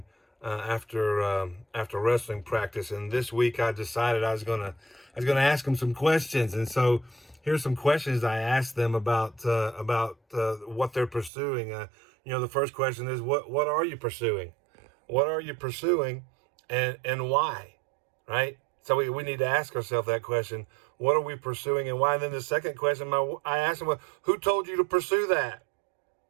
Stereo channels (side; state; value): left; drops out; at 11.3 s